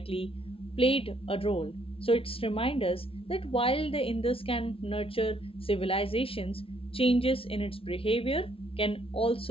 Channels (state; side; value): late; right; 0.26 ms